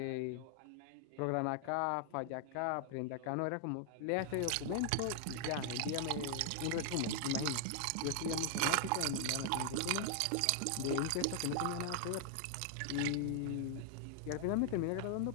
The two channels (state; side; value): different; both; correlation 0.00